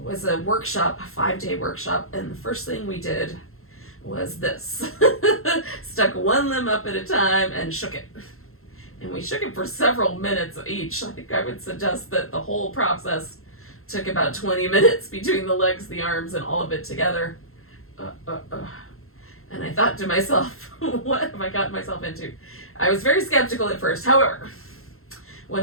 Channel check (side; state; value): right; late; 0.62 ms